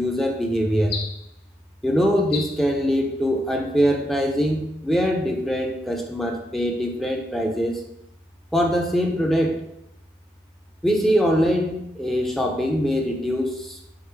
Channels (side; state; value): both; normal; correlation 0.82